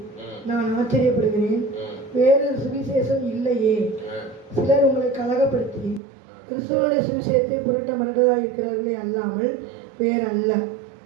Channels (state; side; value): drops out; left; at 6.0 s